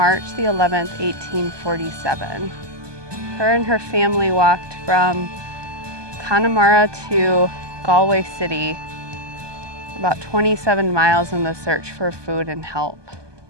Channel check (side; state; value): left; late; 1.2 ms